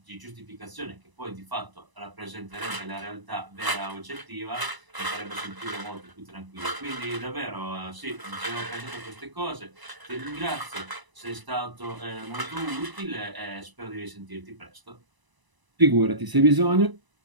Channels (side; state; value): left; late; 1.0 ms